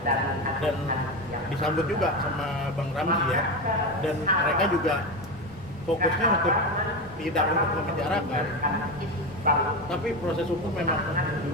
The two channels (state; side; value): normal; both; correlation 0.18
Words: dan disambut juga sama Bang Ramzi ya, dan mereka juga fokusnya untuk tidak untuk memenjarakan, tapi proses hukum memang